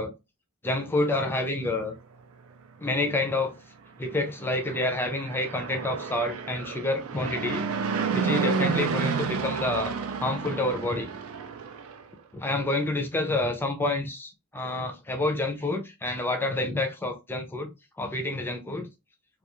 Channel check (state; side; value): normal; both; correlation 0.36